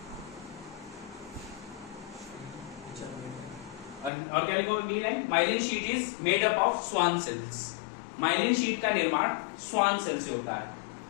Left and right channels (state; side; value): drops out; right; at 4.1 s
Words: और क्या लिखोगे अगली line? Myelin sheath is made up of Schwann cells. Myelin sheath का निर्माण स्वान सेल से होता है।